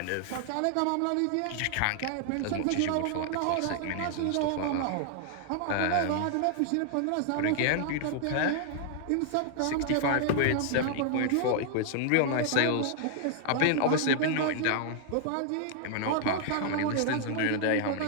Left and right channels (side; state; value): both; different; correlation 0.00